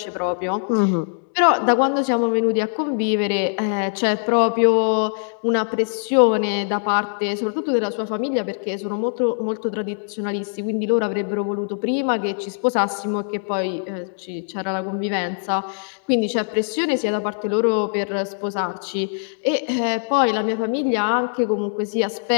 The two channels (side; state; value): right; silent; digital silence